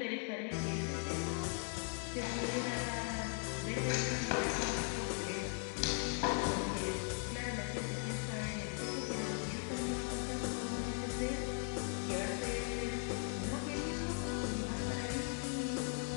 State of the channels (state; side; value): quieter; right; 39.6 dB